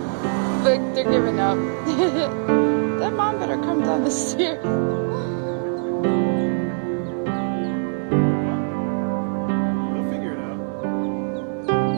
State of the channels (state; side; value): silent; left; 59 dB below the other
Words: Look, they're giving up. That mom better come down the stairs. They'll figure it out.